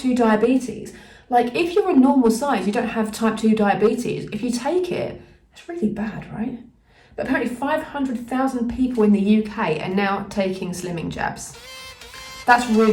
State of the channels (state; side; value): identical; both; correlation 1.00